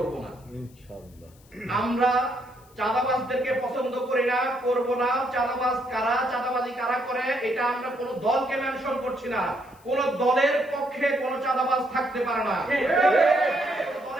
না। ইনশাআল্লাহ। আমরা চাঁদাবাজদেরকে পছন্দ করি না, করব না। চাঁদাবাজ কারা, চাঁদাবাজি কারা করে, এটা আমরা কোন দলকে মেনশন করছি না। কোন দলের পক্ষে কোন চাঁদাবাজ থাকতে পারে না,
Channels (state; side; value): noise; left; hiss, 29 dB below the sound